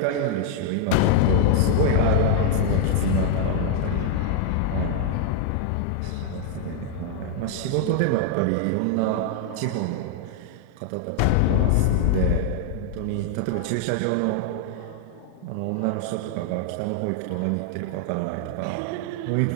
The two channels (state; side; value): different; both; correlation 0.00